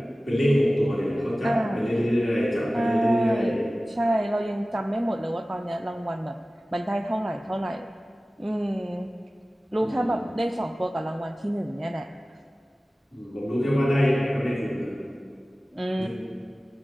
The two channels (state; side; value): normal; both; correlation 0.97